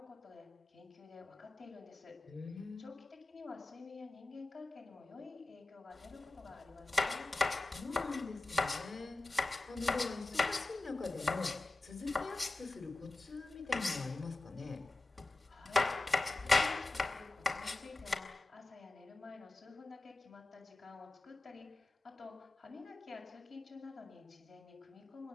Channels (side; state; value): right; quieter; 3.1 dB